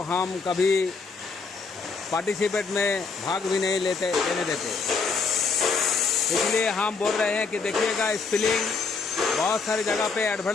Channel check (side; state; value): right; quieter; 4.7 dB